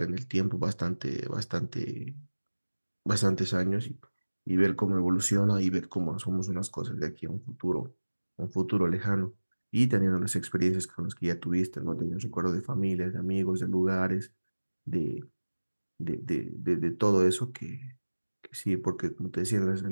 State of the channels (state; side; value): inverted; both; correlation -1.00